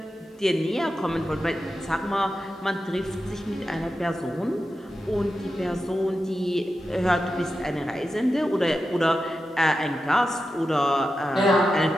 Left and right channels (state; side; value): normal; both; correlation 0.91